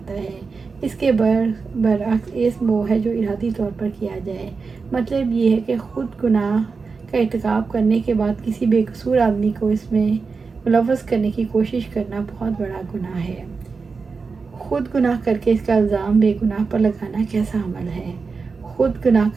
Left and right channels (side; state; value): left; quieter; 4.7 dB